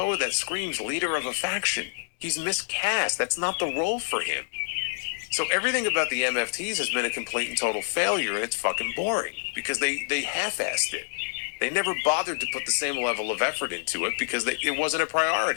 that screams leader of a faction. He's miscast. That's not the role for him. So everything about the MFTs has been a complete and total failure, and it's fucking boring because they half-assed it. They never bothered to put the same level of effort into it because it wasn't a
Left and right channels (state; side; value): silent; right; 60 dB below the other